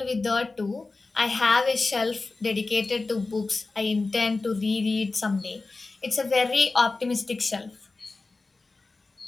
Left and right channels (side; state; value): right; quieter; 3.6 dB